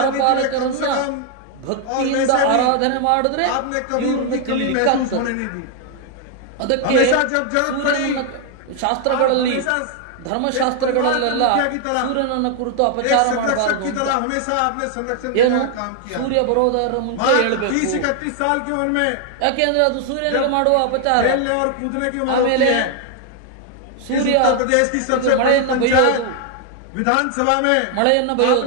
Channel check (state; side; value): different; both; correlation 0.00